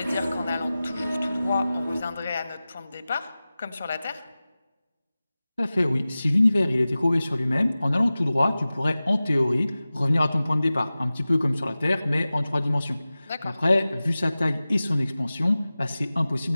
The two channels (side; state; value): both; inverted; correlation -0.97